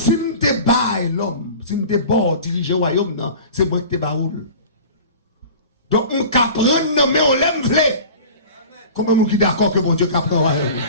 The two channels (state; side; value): inverted; both; correlation -0.39